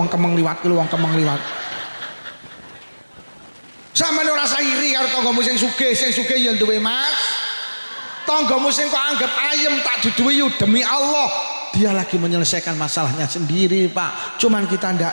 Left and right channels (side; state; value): both; inverted; correlation -1.00